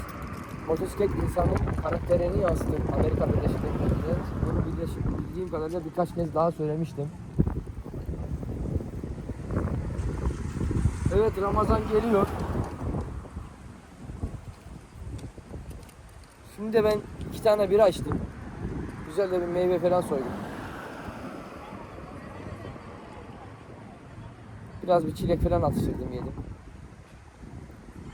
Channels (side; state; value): both; identical; correlation 1.00